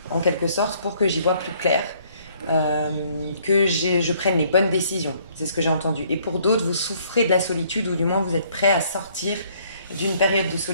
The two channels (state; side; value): inverted; both; correlation -0.63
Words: en quelque sorte, pour que j'y vois plus clair. Je prenne les bonnes décisions. C'est ce que j'ai entendu. Et pour d'autres, vous souffrez de la solitude ou du moins vous êtes prêt à sortir d'une période de